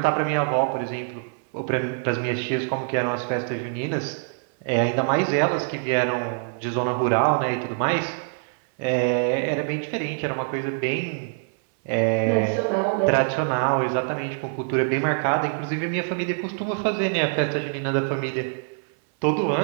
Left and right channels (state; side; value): silent; left; 62 dB below the other